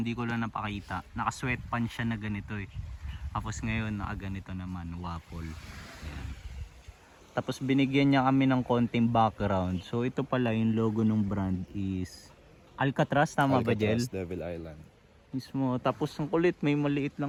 ko lang napakita. Naka-sweatpants siya na ganito eh. Tapos ngayon, naka-ganito naman, waffle. Yan. Tapos binigyan niya kami ng konting background. So ito pala yung logo ng brand is Alcatraz, tama ba, Jel? Devil Island. Mismo. Tapos ang kulit, may maliit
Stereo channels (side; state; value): both; identical; correlation 1.00